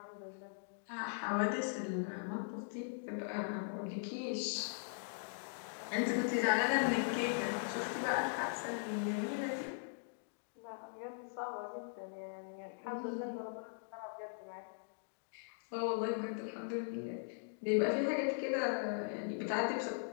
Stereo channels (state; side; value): silent; right; digital silence